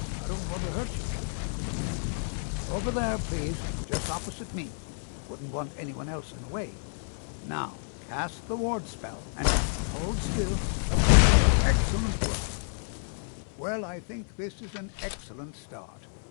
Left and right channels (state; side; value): silent; right; 57 dB below the other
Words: I don't want to hurt you. Over there, please, just opposite me. Wouldn't want anyone else in the way. Now, cast the ward spell, and hold still. Excellent work. Well, I think this is an excellent start.